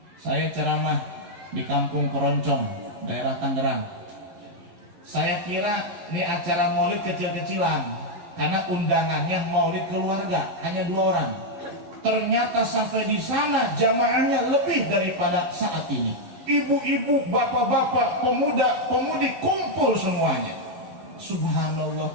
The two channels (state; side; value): late; left; 11 ms